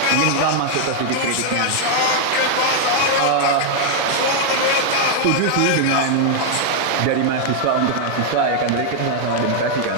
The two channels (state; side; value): different; both; correlation -0.01